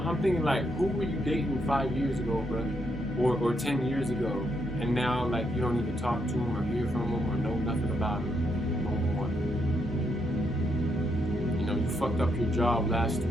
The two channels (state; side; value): normal; both; correlation 0.78